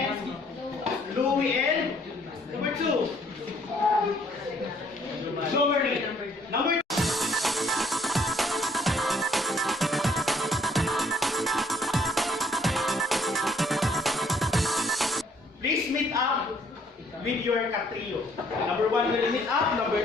Louie and number 2. Jomery. Number 2. Please meet up with your katrio. Number 1 will meet up, number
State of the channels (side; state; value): both; normal; correlation 0.64